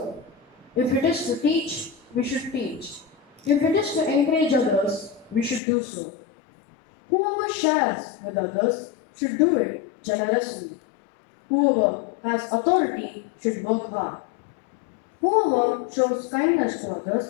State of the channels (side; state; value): right; drops out; at 5.6 s